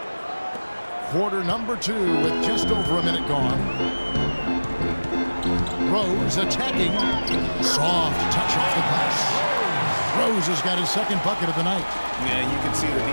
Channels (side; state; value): both; inverted; correlation -1.00